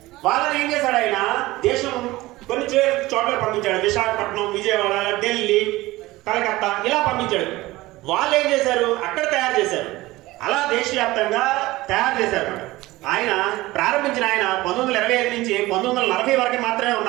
వాళ్ళని ఏం చేశాడు ఆయన? దేశం కొన్ని చోట్ల పంపించాడు. విశాఖపట్నం, విజయవాడ, ఢిల్లీ, కలకత్తా ఇలా పంపించాడు. వాళ్ళు ఏం చేశారు? అక్కడ తయారు చేశారు. అలా దేశవ్యాప్తంగా తయారు చేశారు. ఆయన ప్రారంభించిన ఆయన 1925 నుంచి 1940 వరకు మాత్రమే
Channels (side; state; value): left; quieter; 18.8 dB